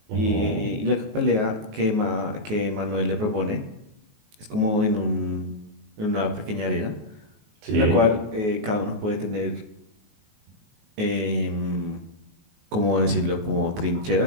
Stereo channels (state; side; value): late; left; 19 ms